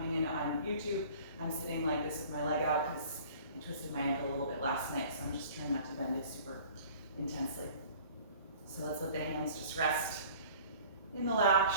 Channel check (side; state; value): both; inverted; correlation -0.48